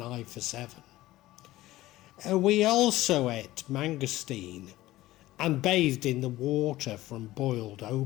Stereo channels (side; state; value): right; quieter; 16.7 dB